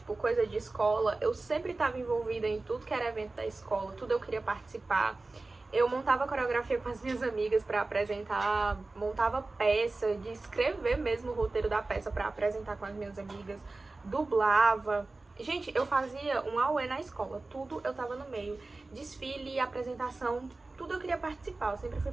coisa de escola, eu sempre estava envolvida em tudo que era evento da escola, tudo eu queria participar. Eu montava coreografia com as minhas amigas para apresentar, montava peça, de escrever mesmo o roteiro da peça para apresentar com as minhas amigas, dublava. Gente, eu fazia um auê na escola, tudo eu tava no meio. Desfile, apresentação, tudo eu queria participar, eu sempre fui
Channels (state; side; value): quieter; left; 3.3 dB